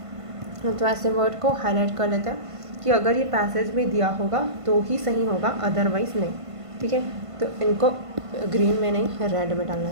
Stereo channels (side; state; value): left; late; 1.5 ms